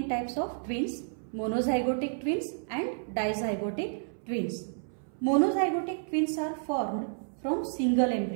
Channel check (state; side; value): silent; left; 57 dB below the other